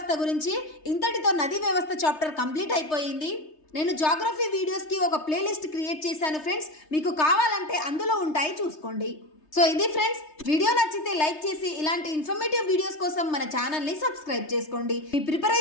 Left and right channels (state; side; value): late; right; 3.3 ms